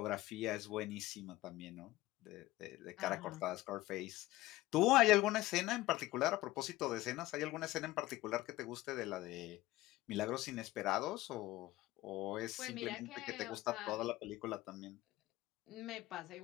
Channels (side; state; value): right; quieter; 17.6 dB